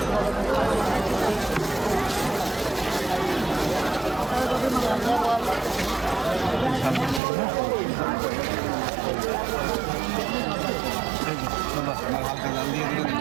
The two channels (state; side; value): drops out; left; at 7.2 s